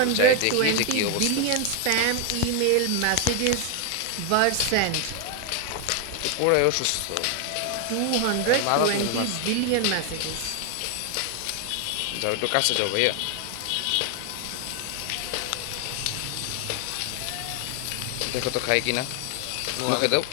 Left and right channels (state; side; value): different; both; correlation 0.01